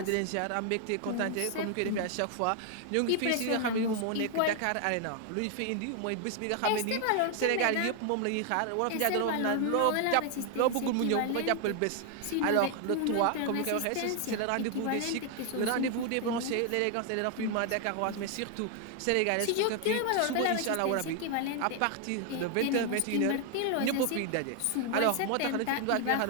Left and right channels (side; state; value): both; different; correlation 0.00